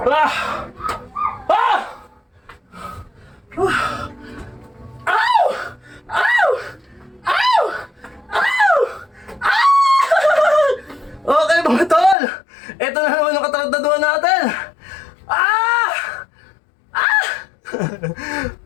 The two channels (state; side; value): drops out; right; at 12.2 s